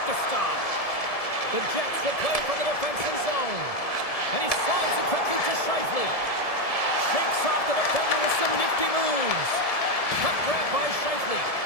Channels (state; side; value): late; right; 1.7 ms